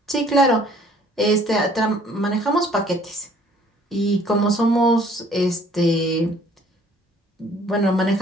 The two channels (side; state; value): both; normal; correlation 0.57